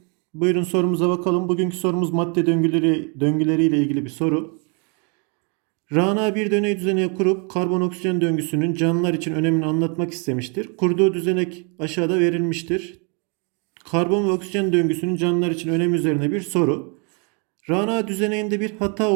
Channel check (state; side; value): quieter; left; 35.8 dB